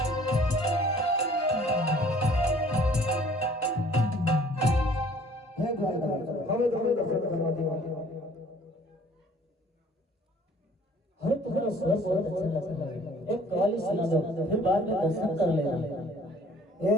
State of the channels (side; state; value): both; normal; correlation 0.55